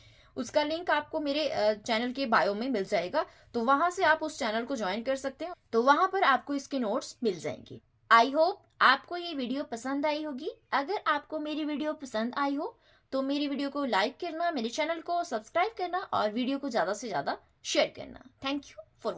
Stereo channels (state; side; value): identical; both; correlation 1.00